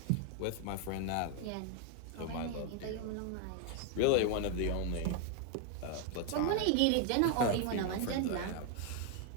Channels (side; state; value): both; different; correlation 0.01